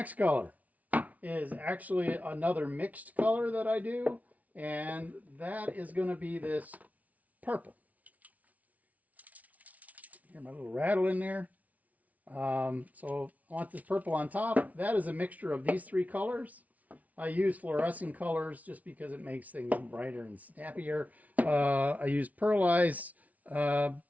color is actually another mixed color that I do, and that is going to be this purple. Hear my little rattle in there. So I want this purple on top. That is a mixture of these three colors. I use fluorescent colors just because it makes things brighter and snappier. I use pearlized, let's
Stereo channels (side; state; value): left; late; 0.071 ms